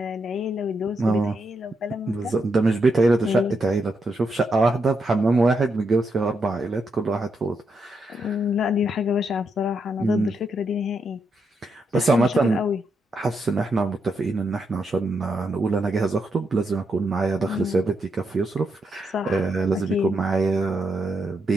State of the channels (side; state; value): both; normal; correlation 0.81